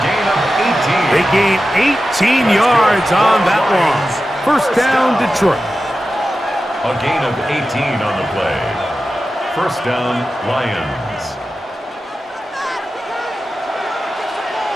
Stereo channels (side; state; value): both; normal; correlation 0.93